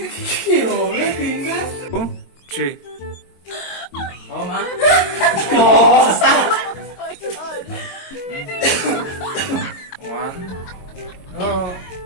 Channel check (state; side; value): late; right; 22 ms